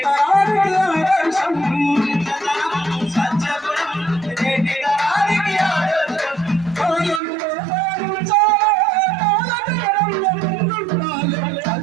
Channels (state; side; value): drops out; left; at 7.2 s